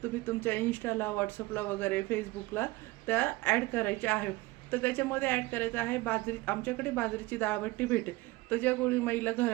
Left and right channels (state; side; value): quieter; left; 20.5 dB